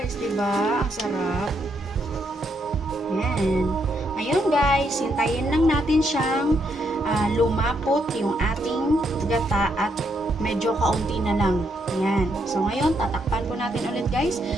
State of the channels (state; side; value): normal; both; correlation 0.77